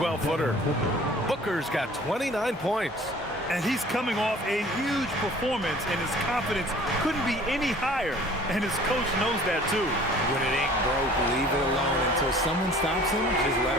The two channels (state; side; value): normal; both; correlation 0.50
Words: Booker's got 29 points. And he's coming off a huge performance, and his confidence couldn't be any higher. And his coach knows that, too. When it ain't broke, leave it alone. Until someone stops him, just let